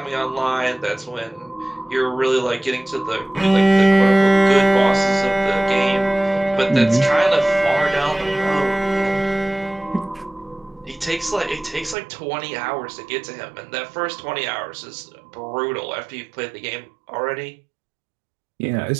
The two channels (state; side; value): drops out; left; at 12.0 s